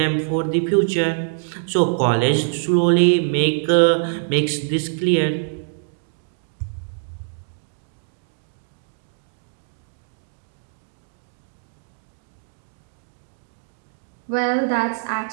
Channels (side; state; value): left; silent; digital silence